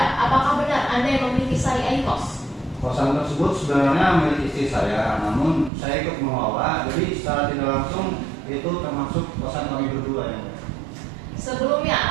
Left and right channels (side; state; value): left; drops out; at 5.7 s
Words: apakah benar Anda yang memiliki sari Aikos? Kosan tersebut sebenarnya milik istri saya, namun saya ikut mengelola, jadi secara tidak langsung itu termasuk kosan kosan kami berdua yang mulia. Sebelumnya,